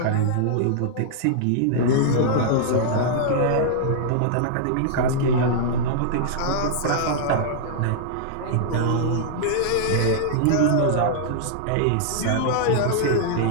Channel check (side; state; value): both; different; correlation -0.01